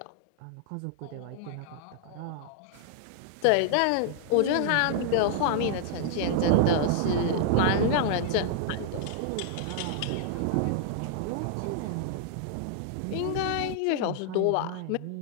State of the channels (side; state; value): both; different; correlation -0.01